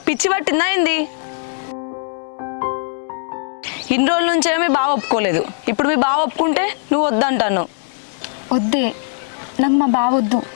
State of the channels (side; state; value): right; silent; digital silence